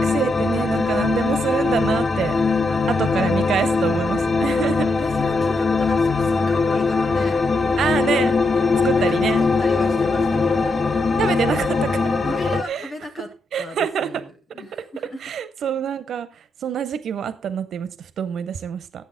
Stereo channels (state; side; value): normal; both; correlation 0.81